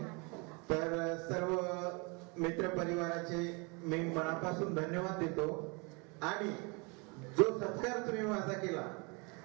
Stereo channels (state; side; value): quieter; left; 30.6 dB